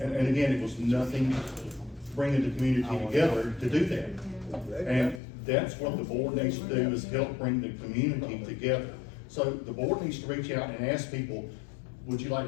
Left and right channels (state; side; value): drops out; right; at 5.2 s